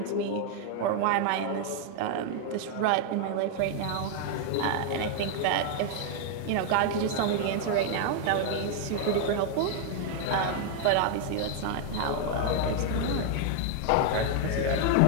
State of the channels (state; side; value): different; both; correlation 0.00